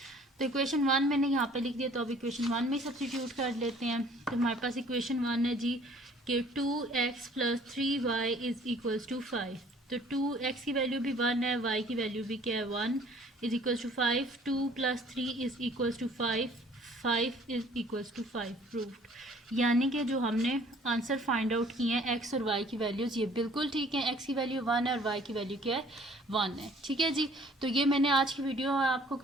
तो इक्वेशन 1 मैंने यहाँ पे लिख दिया, तो अब इक्वेशन 1 में सब्स्टिट्यूट कर लेते हैं। तो हमारे पास इक्वेशन 1 है जी कि 2x + 3y is equals to 5। तो 2x की वैल्यू भी 1 है, y की वैल्यू भी क्या है 1, is equals to 5। 2 + 3 is equals to 5, 5 is equals to 5 proved. यानी कि जो हमने आंसर फाइंड आउट किए हैं x और y की वैल्यूज़ ये बिल्कुल ठीक है। x की वैल्यू 1 है और y की वैल्यू क्या है 1 है। ठीक है जी, तो ये मैंने आज की वीडियो में आपको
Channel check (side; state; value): both; normal; correlation 0.55